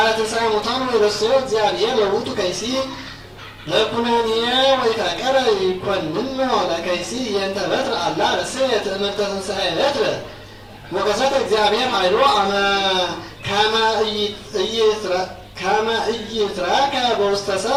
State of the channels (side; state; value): both; identical; correlation 1.00